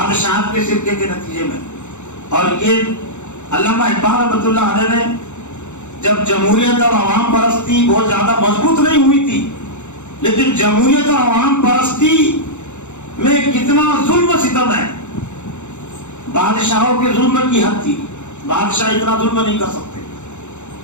کے شرکے کے نتیجے میں. اور یہ علامہ اقبال رحمۃ اللہ علیہ نے جب جمہوریت اور عوام پرستی بہت زیادہ مضبوط نہیں ہوئی تھی، لیکن جمہوریت اور عوام پرستی میں کتنا ظلم و ستم ہے. بادشاہوں کے ظلم کی حد تھی، بادشاہ اتنا ظلم نہیں کر سکتے،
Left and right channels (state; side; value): late; right; 0.83 ms